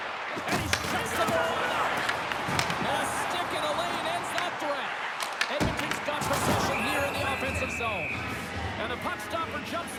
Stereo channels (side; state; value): both; identical; correlation 1.00